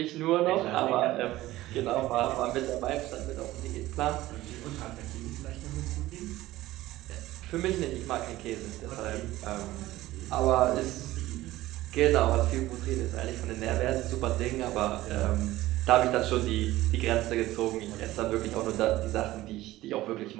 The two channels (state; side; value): quieter; left; 16.5 dB